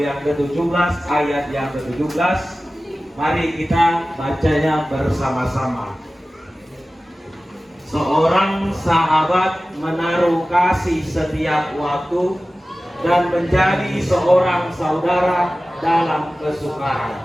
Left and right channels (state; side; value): normal; both; correlation 0.96